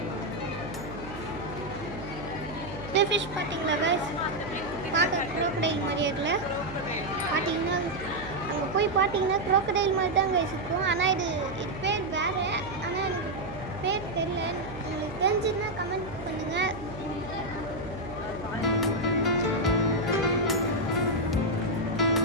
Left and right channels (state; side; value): noise; right; hum, 12 dB below the sound